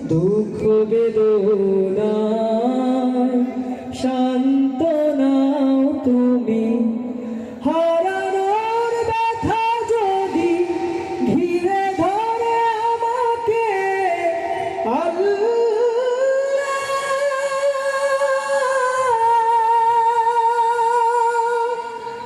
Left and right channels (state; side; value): identical; both; correlation 1.00